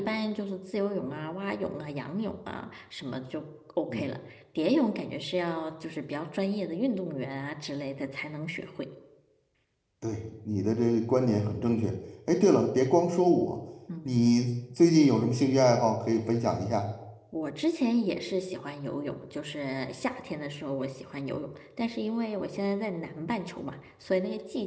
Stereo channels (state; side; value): identical; both; correlation 1.00